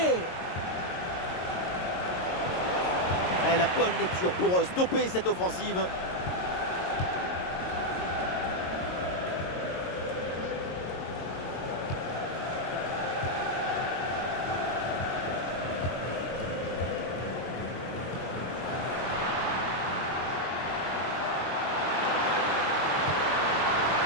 Et la bonne lecture pour stopper cette offensive.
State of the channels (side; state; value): right; late; 22 ms